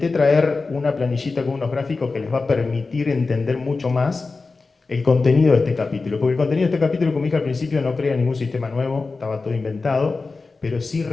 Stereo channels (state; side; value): quieter; right; 4.0 dB